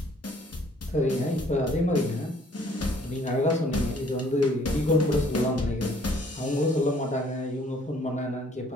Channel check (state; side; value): normal; both; correlation 0.60